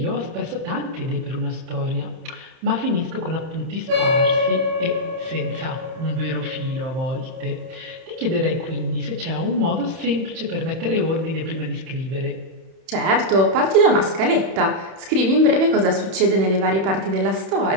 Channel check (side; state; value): left; late; 31 ms